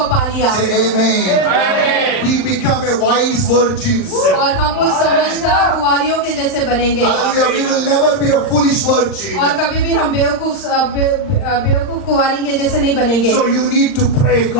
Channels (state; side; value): late; right; 39 ms